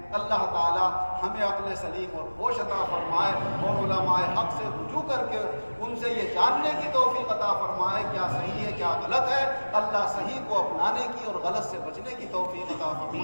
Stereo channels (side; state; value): both; inverted; correlation -1.00